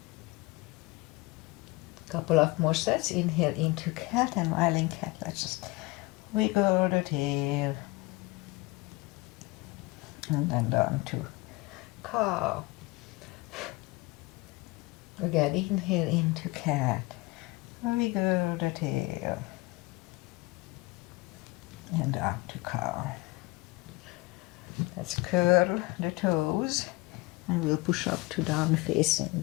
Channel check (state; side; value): quieter; right; 22.2 dB